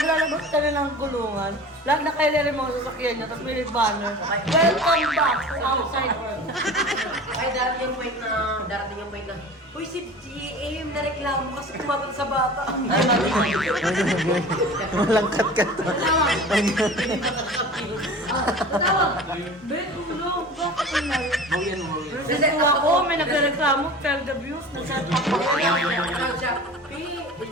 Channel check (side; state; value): both; normal; correlation 0.38